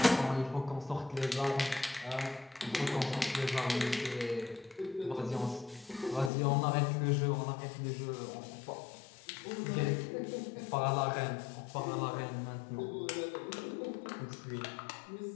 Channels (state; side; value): drops out; right; at 6.3 s